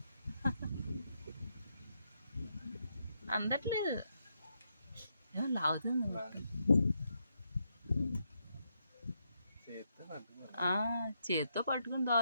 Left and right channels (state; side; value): inverted; both; correlation -0.80